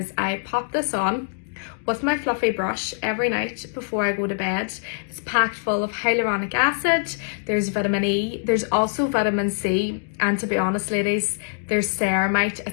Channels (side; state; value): right; silent; digital silence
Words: I pop this on with my fluffy brush every night before I go to bed. It's packed full of hyaluronic acid, there's vitamin E, there's also vitamin C, and to be honest ladies, there's ceramide.